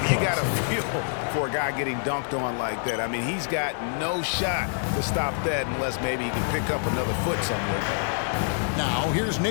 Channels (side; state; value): right; silent; 61 dB below the other